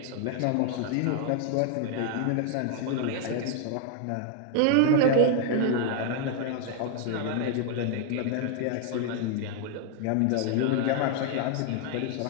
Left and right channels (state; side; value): different; both; correlation 0.00